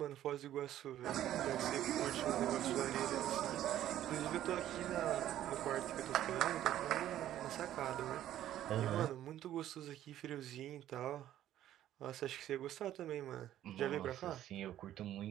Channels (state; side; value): quieter; left; 12.3 dB